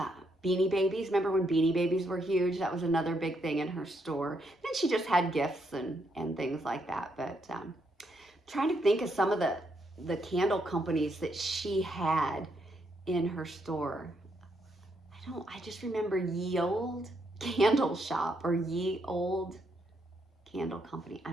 Beanie Babies. Remember when Beanie Babies were huge? That was another big thing in her store. Then she just had gifts and things like that. But trying to think of some of the candle companies that she had in her store. I just remember Ye Old Candle Shop or Ye Old Candle Company. I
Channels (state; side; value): normal; both; correlation 0.76